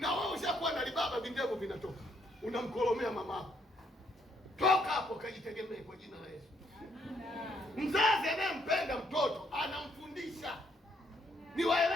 wewe ushakuwa na libaba, vindevu vinatoka, unamkolomea mamako. Toka hapo, kajitegemee kwa jina la Yesu. Mzazi anayempenda mtoto anamfundisha.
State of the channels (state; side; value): normal; both; correlation 0.71